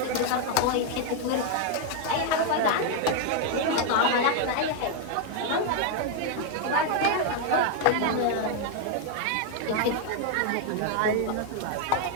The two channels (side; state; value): both; different; correlation 0.00